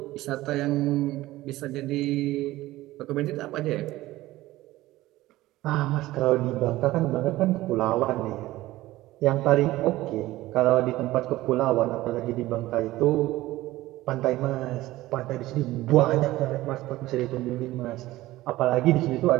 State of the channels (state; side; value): quieter; left; 17.0 dB